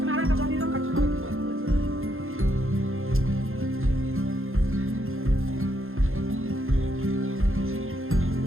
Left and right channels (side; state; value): left; late; 0.60 ms